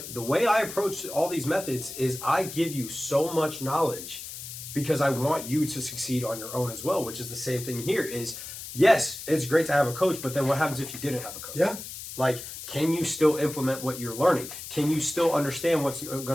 the way I approach all these methods is I give you so much knowledge because I want you to succeed on your own as well, which is the same thing here is, yes, it's great to have a coach, but then what happens if you didn't have a coach? Yeah. Like, can you still implement what you're learning? Can you still understand what's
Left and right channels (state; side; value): noise; left; hiss, 10 dB below the sound